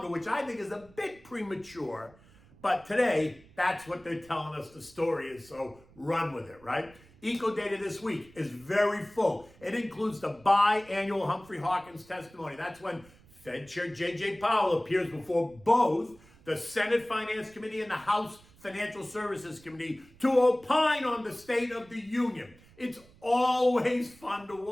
which I think is a bit premature. But today, that's what they're telling us the story is, so run with it, right? Eco data this week is very full. It includes the biannual Humphrey Hawkins testimony. That's when Fed Chair J.J. Powell appears before both the Senate Finance Committee and the House Financial Services Committee to opine on the State of the Union. It's always fun to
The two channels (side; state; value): right; noise; rumble, 25 dB below the sound